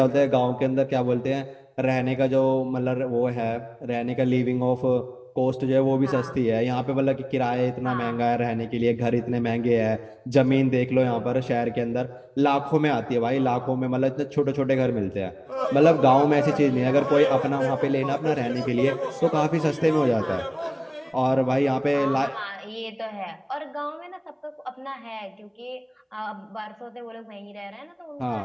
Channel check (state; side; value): identical; both; correlation 1.00